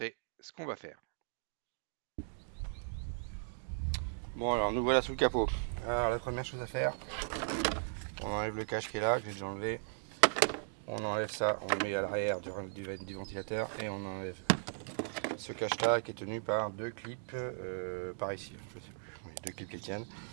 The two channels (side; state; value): left; silent; digital silence